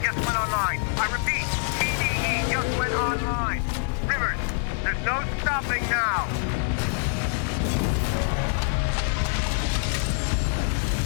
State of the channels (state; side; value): silent; right; 61 dB below the other